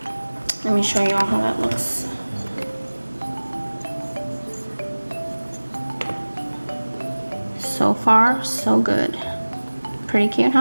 Let me show you all how that looks. So far, so good. Pretty cute,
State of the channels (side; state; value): both; inverted; correlation -1.00